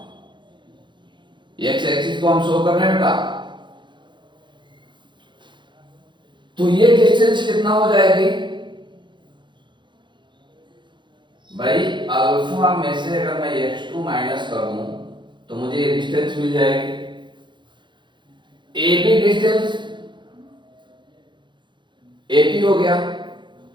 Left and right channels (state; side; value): late; left; 0.23 ms